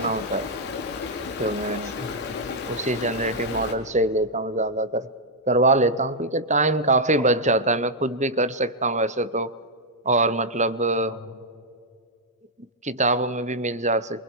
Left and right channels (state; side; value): normal; both; correlation -0.05